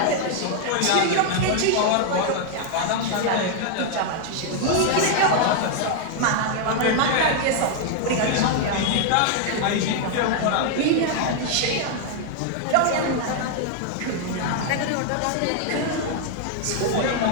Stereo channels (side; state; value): both; different; correlation 0.00